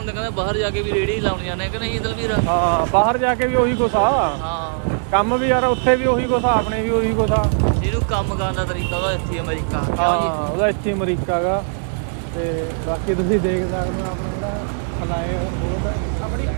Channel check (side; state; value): left; silent; 61 dB below the other